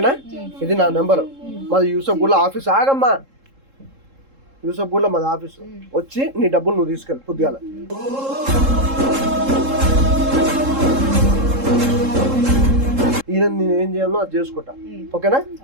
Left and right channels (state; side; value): late; left; 3.7 ms